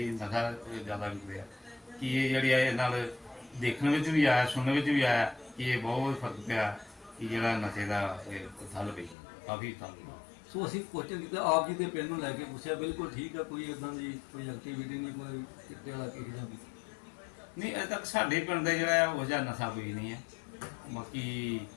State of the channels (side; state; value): right; drops out; at 9.2 s